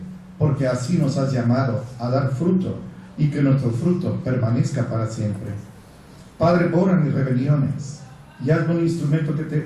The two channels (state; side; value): identical; both; correlation 1.00